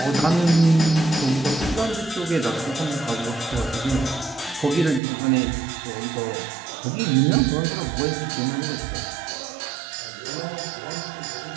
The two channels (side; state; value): left; drops out; at 5.0 s